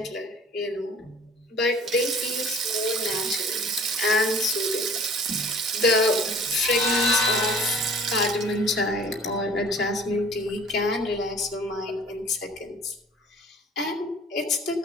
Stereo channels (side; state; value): both; normal; correlation 0.49